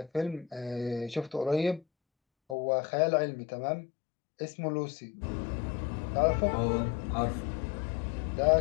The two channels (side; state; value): right; drops out; at 2.6 s